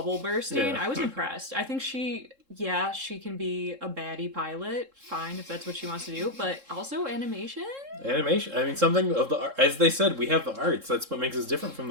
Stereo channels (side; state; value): left; late; 3.7 ms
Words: bursting. Yeah. I was impressed. I think she can be a baddie pilot. Fine if that's what she wants to do, but also animation. Animation. I mean, something of the... As they said, we have the arts. That's what makes us different from